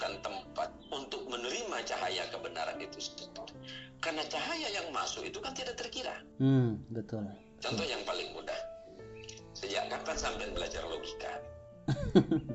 tempat untuk menerima cahaya kebenaran itu? Karena cahaya yang masuk itu kan tidak terkira. Betul. Contoh yang paling mudah. Sejak kapan sampai belajar logika?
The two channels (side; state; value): both; identical; correlation 1.00